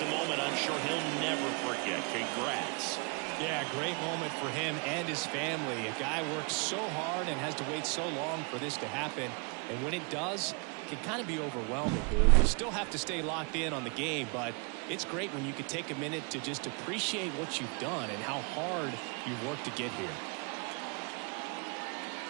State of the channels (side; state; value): left; quieter; 34.0 dB